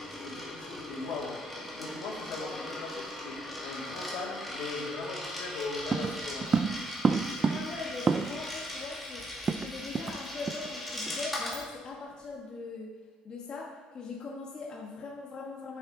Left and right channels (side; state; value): both; normal; correlation 0.73